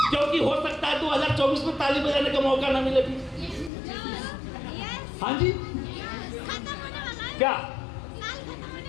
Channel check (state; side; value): drops out; right; at 3.7 s